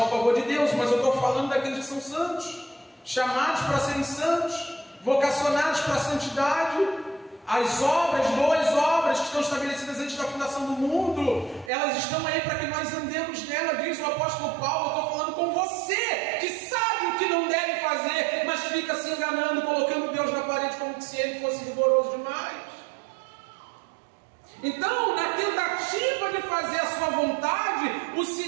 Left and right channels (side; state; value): left; drops out; at 11.7 s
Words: o favor de Deus, mas eu estou falando daqueles que são santos, chamados para serem santos, vocacionados para a santidade. As obras, boas obras que estão estabelecidas antes da fundação do mundo, elas estão aí para que nós andemos nela, diz o apóstolo Paulo. Eu estou falando com você, que sabe o que não deve fazer, mas fica se enganando, colocando Deus na parede como se ele fosse rigoroso demais. Então, na tentativa de fazer a sua vontade, o